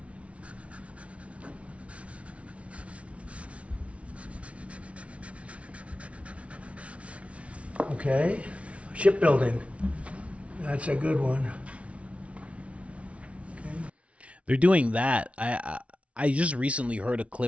Okay, shipbuilding. That's a good one. They're doing that. I just recently heard a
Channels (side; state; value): left; late; 0.063 ms